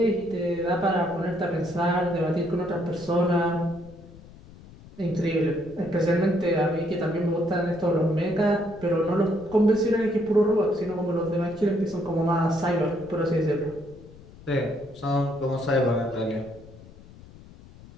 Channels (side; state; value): left; noise; rumble, 20 dB below the sound